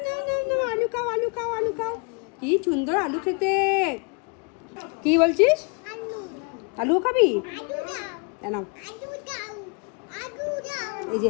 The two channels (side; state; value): right; quieter; 34.6 dB